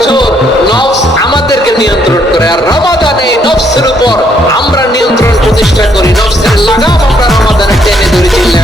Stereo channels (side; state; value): both; normal; correlation 0.70